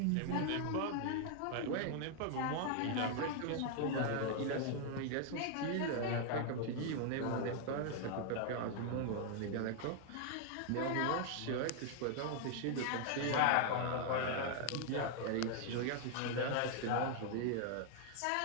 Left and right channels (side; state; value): both; different; correlation 0.00